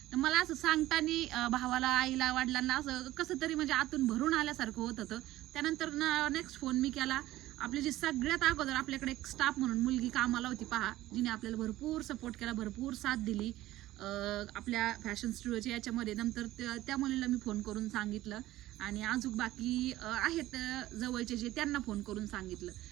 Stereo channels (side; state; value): left; quieter; 15.7 dB